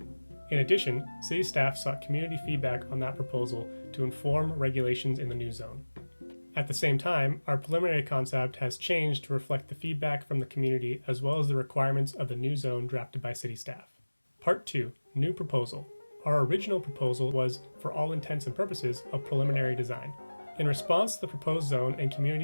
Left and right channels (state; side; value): inverted; both; correlation -1.00